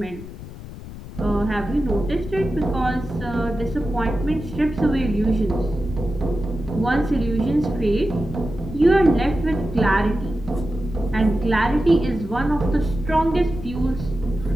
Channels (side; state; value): left; noise; rumble, 13 dB below the sound